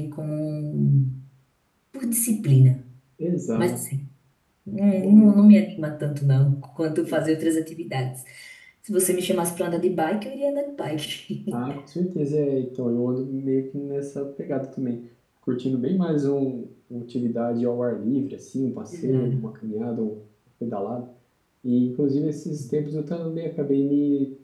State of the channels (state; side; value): identical; both; correlation 1.00